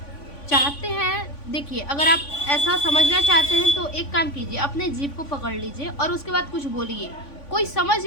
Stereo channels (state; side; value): late; right; 3.5 ms